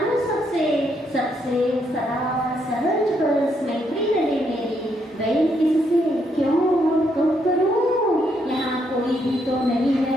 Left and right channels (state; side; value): normal; both; correlation 0.75